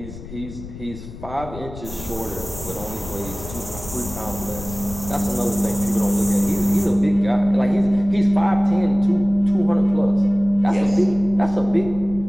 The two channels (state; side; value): noise; left; rumble, 13 dB below the sound